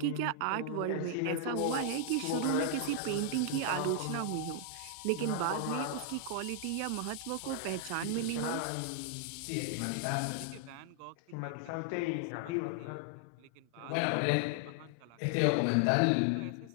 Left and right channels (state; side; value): different; both; correlation -0.01